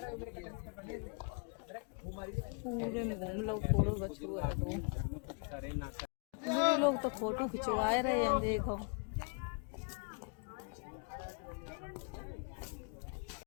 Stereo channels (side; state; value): right; quieter; 35.7 dB